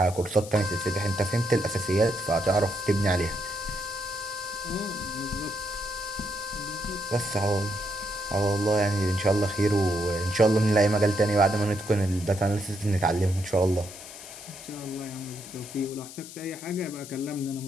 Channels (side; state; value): left; noise; hiss, 14 dB below the sound